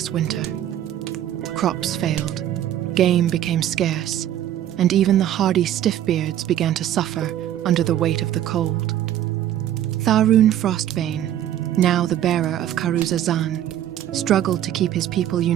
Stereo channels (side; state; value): left; quieter; 11.6 dB